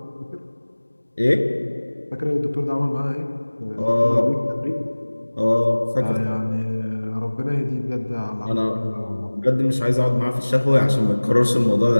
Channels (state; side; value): inverted; both; correlation -1.00